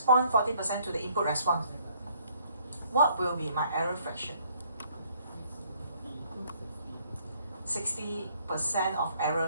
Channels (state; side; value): inverted; both; correlation -0.64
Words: 40% to the input response. What will be my error fraction? 60% of error